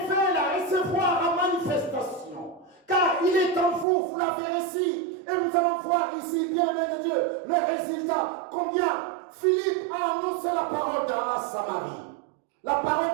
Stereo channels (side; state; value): left; drops out; at 3.9 s